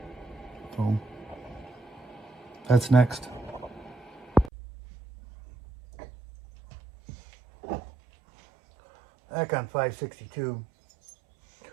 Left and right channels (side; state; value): left; drops out; at 4.5 s